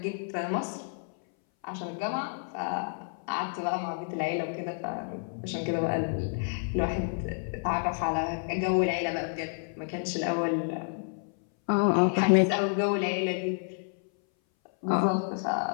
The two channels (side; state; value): right; silent; 58 dB below the other